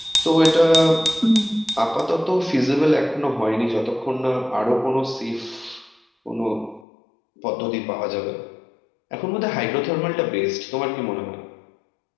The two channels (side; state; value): right; drops out; at 6.9 s